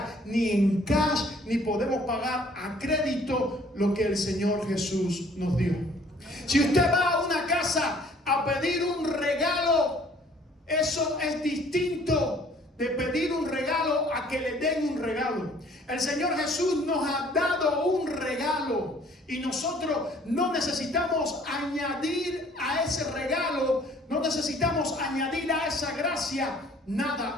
ni en cash, ni podemos pagar a crédito lo que el Señor Jesús nos dio. Si usted va a una casa a pedir un regalo, eso es distinto de pedir un regalo a que le den un regalo. El Señor Jesús nos ha dado un regalo, y nosotros no necesitamos añadir a ese regalo, no necesitamos añadir a esa gracia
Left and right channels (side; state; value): both; normal; correlation 0.57